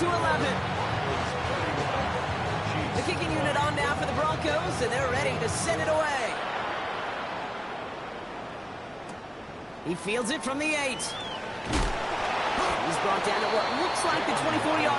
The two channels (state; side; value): identical; both; correlation 1.00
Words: 11. The kicking unit on now for the Broncos, and they're ready to send it away. He fields it from the 8. He's brought down at what looks like the